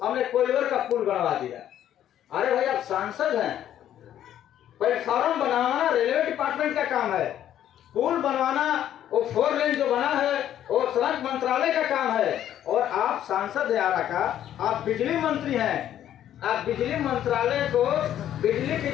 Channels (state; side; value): quieter; right; 11.1 dB